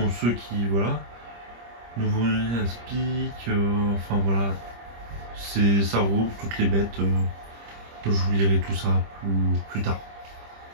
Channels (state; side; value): late; left; 25 ms